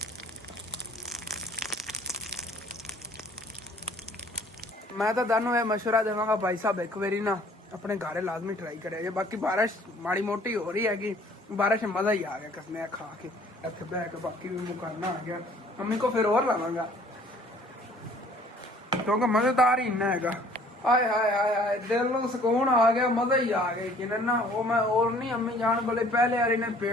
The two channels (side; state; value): both; normal; correlation 0.55